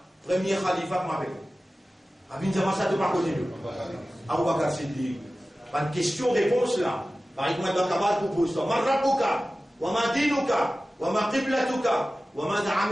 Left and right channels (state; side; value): normal; both; correlation 0.96